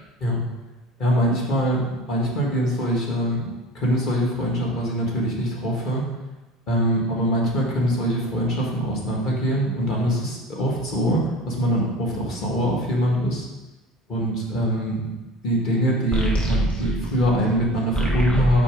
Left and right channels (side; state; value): both; normal; correlation 0.39